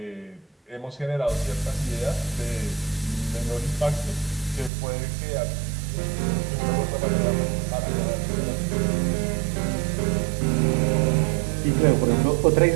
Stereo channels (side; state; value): left; drops out; at 4.7 s